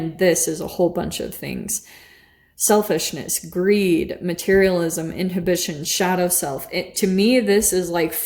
this is a whole bunch of things. Selfishness, greed, materialism, inhibition, shadow self. To me, this is like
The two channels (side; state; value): both; identical; correlation 1.00